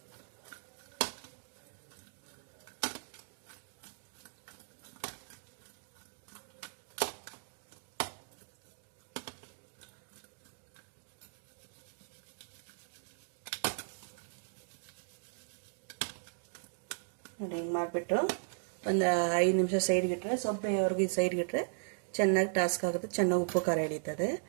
ನೋಡಿ, ಹಿಂಗೆ ಮಾಡಿಬಿಟ್ಟು ಒಂದು 5 ನಿಮಿಷ ಸೈಡ್ಗಿಟ್ರೆ, ಸೊಪ್ಪೆವರೆಗೂ ಸೈಡ್ಗಿಟ್ರೆ ಚೆನ್ನಾಗಿ ಟಾಸ್ಕ್ ಆಗುತ್ತೆ. ಚೆನ್ನಾಗಿ ಉಪ್ಪು ಖಾರ ಹಿಡಿತದೆ.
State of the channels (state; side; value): silent; left; digital silence